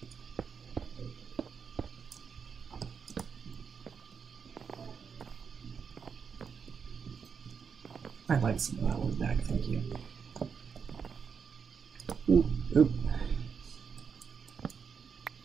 I'd like some of that one back, thank you. Oop, oop.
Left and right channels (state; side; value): quieter; left; 6.3 dB